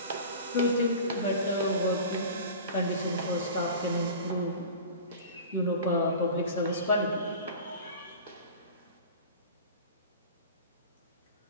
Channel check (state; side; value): inverted; both; correlation -0.36